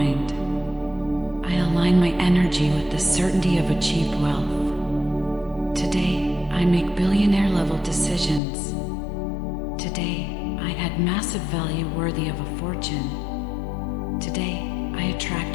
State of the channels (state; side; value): drops out; right; at 8.4 s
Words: I align my energy with the certainty of achieved wealth. Today, I make billionaire-level decisions. Today, I add massive value worthy of a fortune. Today, I attract